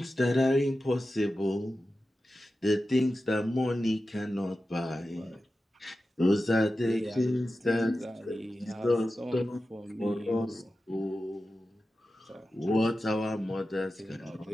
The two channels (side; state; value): both; normal; correlation 0.93